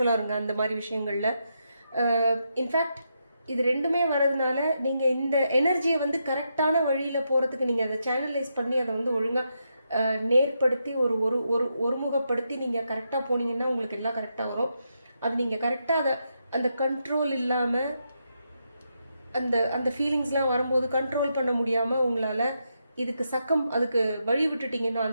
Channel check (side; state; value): both; inverted; correlation -0.83